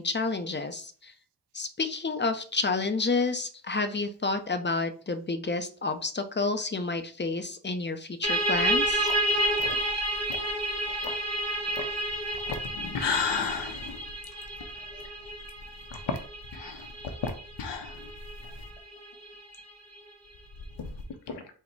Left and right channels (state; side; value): normal; both; correlation 0.18